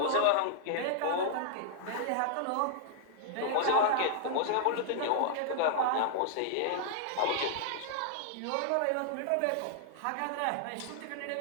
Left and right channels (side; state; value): both; different; correlation -0.01